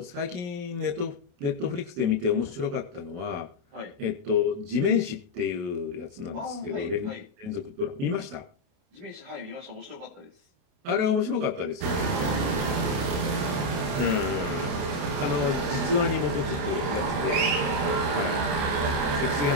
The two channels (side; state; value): left; late; 29 ms